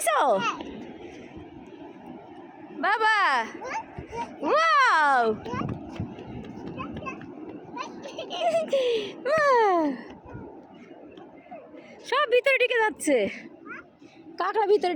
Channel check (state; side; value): identical; both; correlation 1.00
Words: বাবা? ওয়াও, সব ভিতরে ঢুকে যাচ্ছে, কাঁকড়া ভিতরে